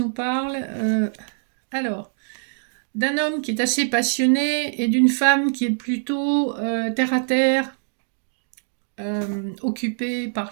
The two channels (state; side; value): silent; left; digital silence